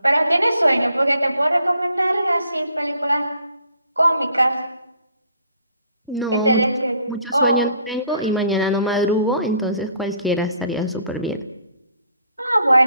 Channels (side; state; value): both; inverted; correlation -0.62